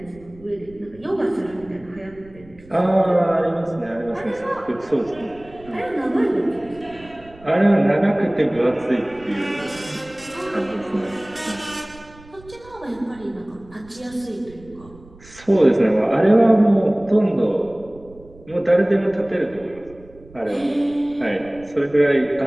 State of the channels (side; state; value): right; noise; rumble, 23 dB below the sound